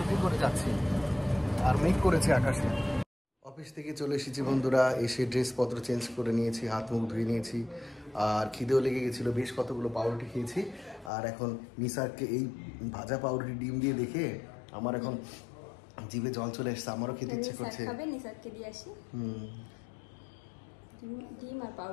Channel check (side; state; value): right; drops out; at 11.1 s